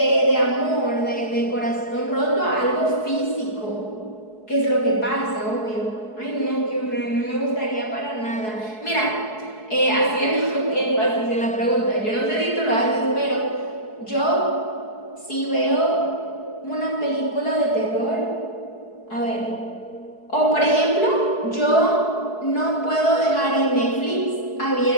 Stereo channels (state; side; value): late; right; 4.7 ms